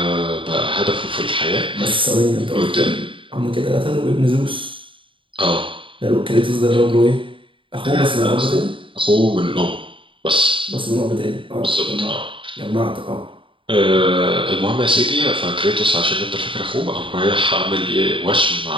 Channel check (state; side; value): late; left; 0.25 ms